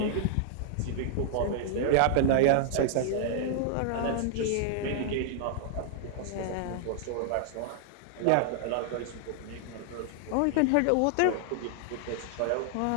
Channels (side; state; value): both; different; correlation -0.01